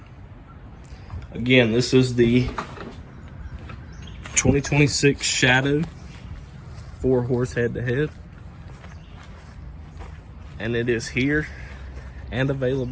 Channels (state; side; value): identical; both; correlation 1.00